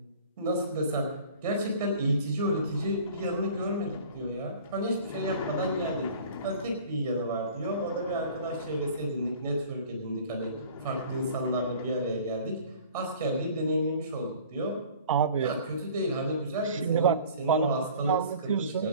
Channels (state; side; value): inverted; both; correlation -0.47